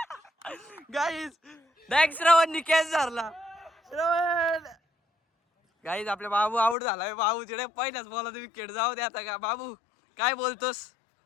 गाईज डायरेक्ट श्रवणनी कॅच धरला. श्रवण गाईज आपल्या बाबू आउट झालाय. बाबू तिकडे पहिल्याच बॉलला विकेट. जाऊ दे आता. का बाबू काय बोलतोस?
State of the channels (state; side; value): drops out; right; at 6.8 s